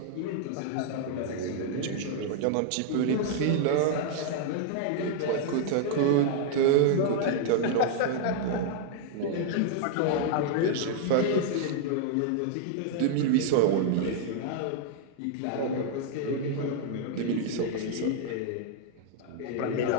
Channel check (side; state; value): both; different; correlation -0.01